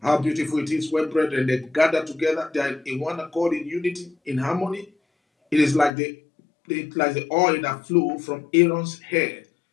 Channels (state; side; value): drops out; right; at 5.9 s